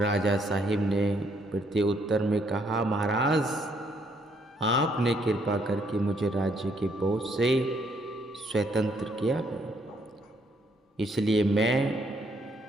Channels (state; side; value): normal; both; correlation 0.70